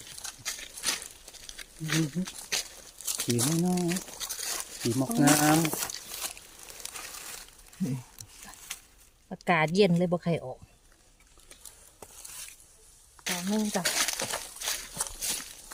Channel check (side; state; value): both; identical; correlation 1.00